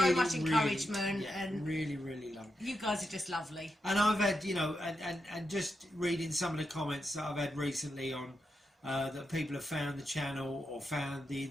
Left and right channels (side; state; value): both; normal; correlation 0.86